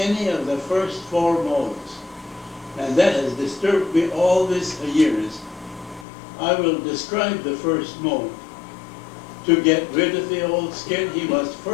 of the first 4 molts. And that has disturbed me all these years. I will describe the first molt. To get rid of the old skin, he must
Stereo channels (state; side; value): drops out; right; at 6.1 s